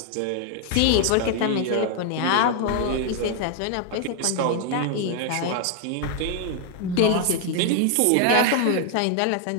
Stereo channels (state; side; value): different; both; correlation 0.00